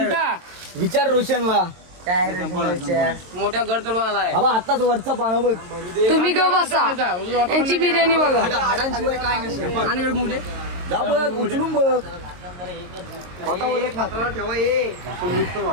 विचार रोशनला. मोठ्या गड चढून आलाय. बाबा आताच वरचा पानं बघ. तुम्ही ग बसा. यांची बिर्याणी बघा. जा बघ उचलून बघ.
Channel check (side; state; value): left; late; 23 ms